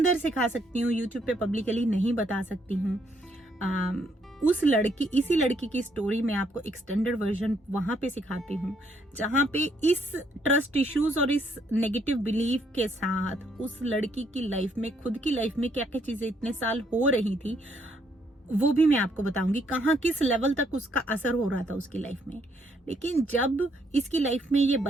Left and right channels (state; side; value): normal; both; correlation 0.71